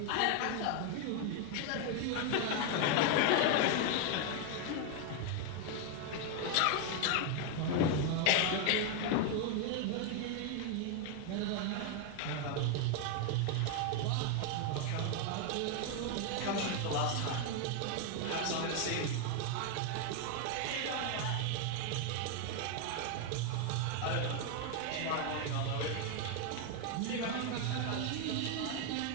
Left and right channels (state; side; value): different; both; correlation 0.01